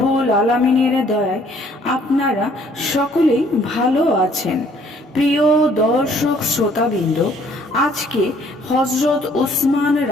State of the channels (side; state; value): both; normal; correlation 0.61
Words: আলামিনের দয়ায় আপনারা সকলেই ভালো আছেন। প্রিয় দর্শক শ্রোতাবৃন্দ, আজকে হজরত উসমান